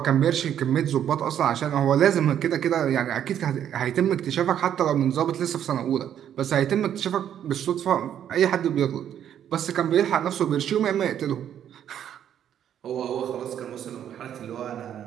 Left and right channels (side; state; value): left; quieter; 9.9 dB